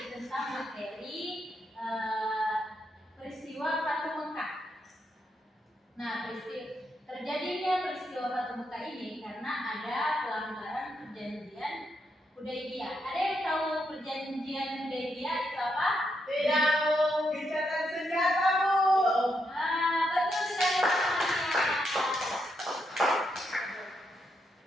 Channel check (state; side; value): normal; both; correlation 0.80